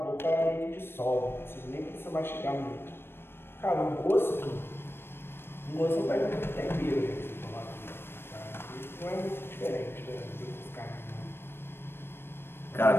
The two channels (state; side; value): late; right; 0.11 ms